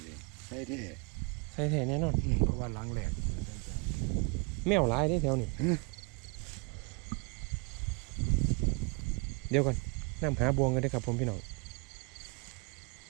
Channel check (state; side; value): quieter; left; 31.4 dB